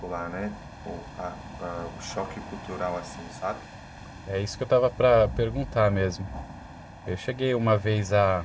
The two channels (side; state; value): both; identical; correlation 1.00